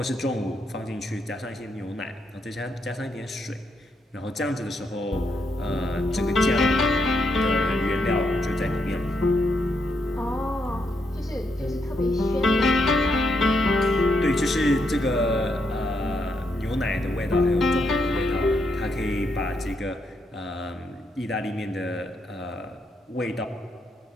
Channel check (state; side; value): normal; both; correlation 0.78